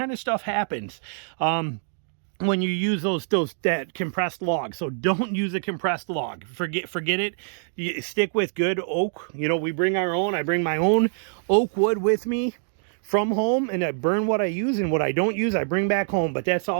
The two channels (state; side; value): silent; left; digital silence